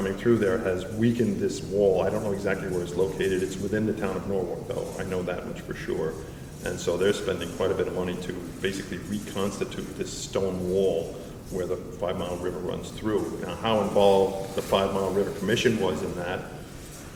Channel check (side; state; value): both; identical; correlation 1.00